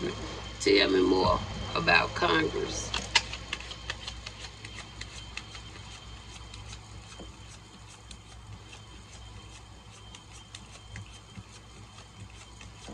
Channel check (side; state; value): both; identical; correlation 1.00